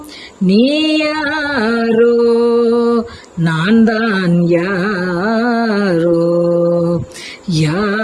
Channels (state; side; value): identical; both; correlation 1.00